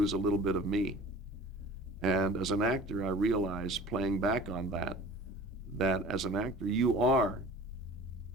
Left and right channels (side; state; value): both; normal; correlation 0.42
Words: a little bit of me. And as an actor, I realize, playing back on that as an actor, you are